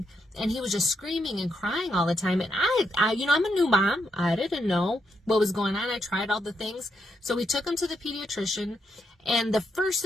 And he was just screaming and crying all the time. And I I'm a new mom. I didn't know what was going on. I tried all the things. So we took him to the pediatrician. And the first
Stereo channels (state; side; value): normal; both; correlation 0.80